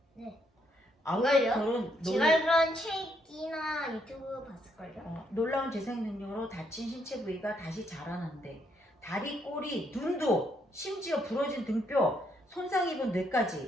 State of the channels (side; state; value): both; normal; correlation 0.74